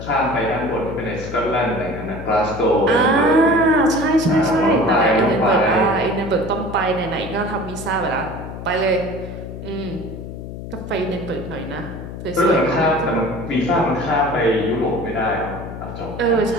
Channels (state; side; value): noise; left; hum, 10 dB below the sound